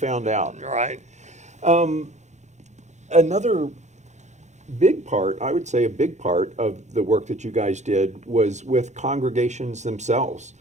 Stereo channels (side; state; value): left; late; 0.34 ms